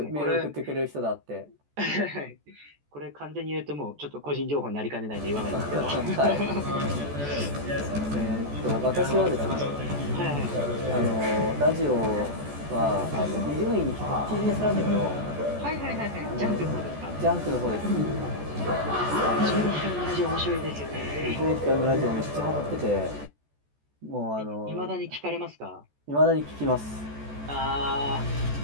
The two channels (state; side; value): late; left; 14 ms